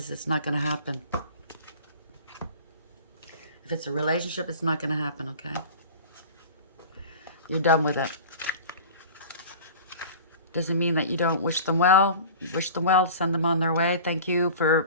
it's not going to happen. If it's a relationship, it's not going to happen, okay? You're done with it. Doesn't mean that you don't wish them well. Wish them well, send them on their way. Thank you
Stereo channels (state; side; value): inverted; both; correlation -0.39